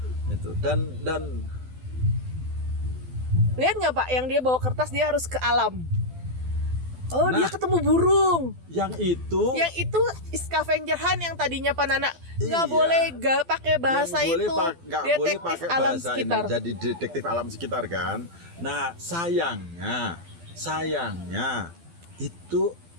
itu dan Lihat nggak Pak, yang dia bawa kertas dia harus ke alam. Oh, dia Nah. ketemu burung. yang itu Yang itu scavenger hunt yang tadinya Panana nggak Iya. boleh pakai bahasa yang itu. nggak boleh Detektif pakai alam bahasa sekitar. ini, jadi detektif alam sekitar kan. Nah sayangnya itu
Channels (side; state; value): left; late; 12 ms